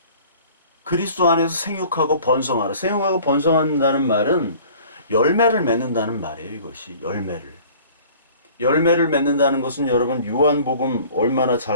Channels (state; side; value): inverted; both; correlation -0.48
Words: 그리스도 안에서 생육하고 번성하라. 생육하고 번성한다는 말은 열매를 맺는다는 말이에요. 이것이 열매를 맺는다는 것은 여러분 요한복음 얼마나